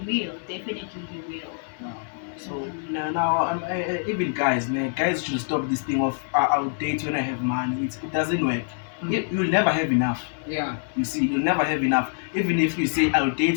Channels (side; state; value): right; silent; digital silence